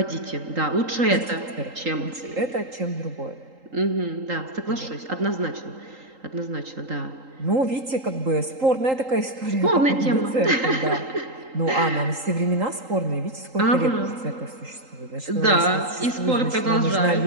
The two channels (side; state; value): left; late; 3.8 ms